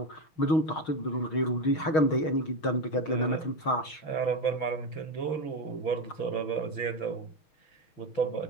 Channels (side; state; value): right; late; 6.4 ms